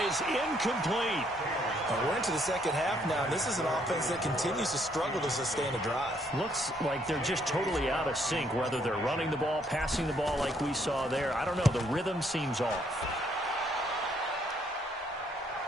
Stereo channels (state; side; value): normal; both; correlation 0.69